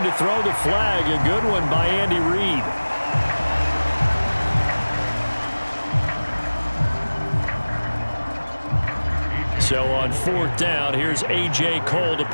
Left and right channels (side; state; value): both; inverted; correlation -1.00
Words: to throw the flag, a good one by Andy Reid. So on 4th down, here's A.J. Cole to